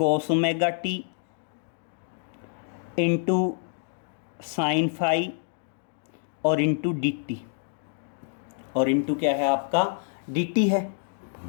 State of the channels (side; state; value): right; silent; digital silence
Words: omega T into sine phi और into D T, और into क्या है आपका डी टी है।